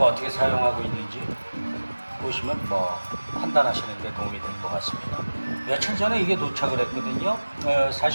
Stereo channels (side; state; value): both; inverted; correlation -1.00